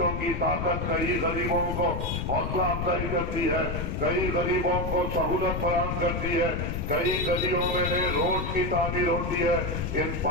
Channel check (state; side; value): noise; left; rumble, 2 dB below the sound